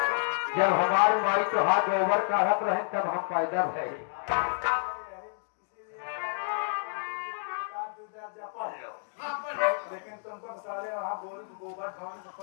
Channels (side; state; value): right; silent; digital silence